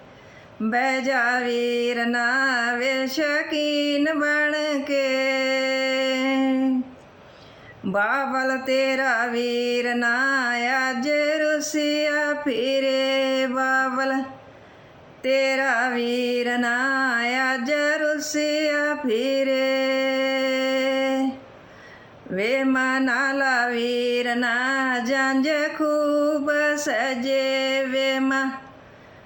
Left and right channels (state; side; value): identical; both; correlation 1.00